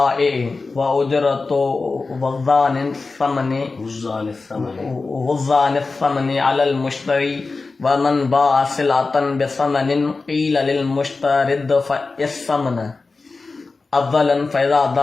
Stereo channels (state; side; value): quieter; right; 3.9 dB